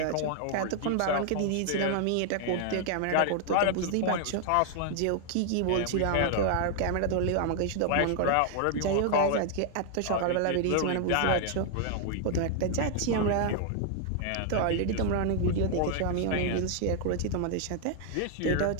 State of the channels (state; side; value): different; both; correlation 0.00